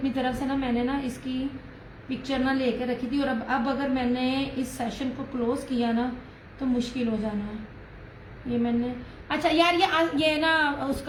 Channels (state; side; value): identical; both; correlation 1.00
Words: तरफ से ना, मैंने ना इसकी पिक्चर ना लेके रखी थी। और अब अगर मैंने इस सेशन को क्लोज किया ना तो मुश्किल हो जाना है। ये मैंने, अच्छा यार ये ना